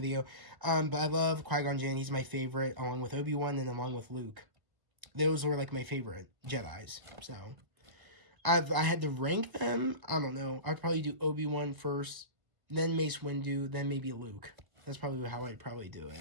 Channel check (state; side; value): late; left; 1.6 ms